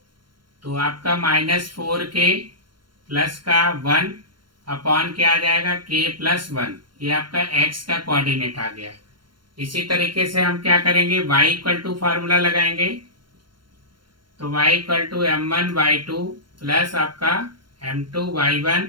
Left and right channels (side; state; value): left; late; 0.72 ms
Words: तो आपका -4k प्लस का 1 अपॉन क्या आ जाएगा k प्लस 1, ये आपका x का कोऑर्डिनेट आ गया। इसी तरीके से हम क्या करेंगे, y इक्वल टू फार्मूला लगाएंगे। तो y equal to m1 y2 plus आपका m2 y1